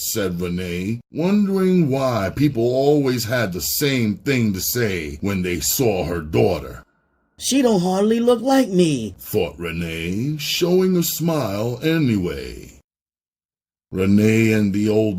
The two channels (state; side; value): identical; both; correlation 1.00